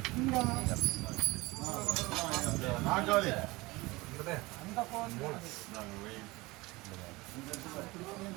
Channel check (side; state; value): left; quieter; 22.1 dB